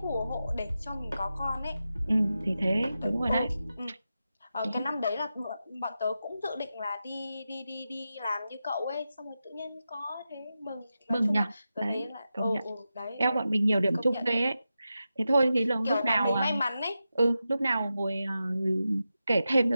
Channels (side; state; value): both; inverted; correlation -0.90